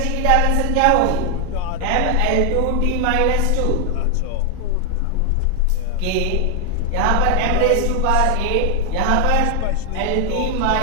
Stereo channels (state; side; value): different; both; correlation 0.01